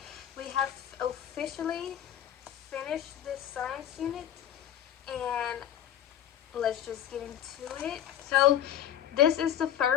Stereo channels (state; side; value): quieter; right; 10.7 dB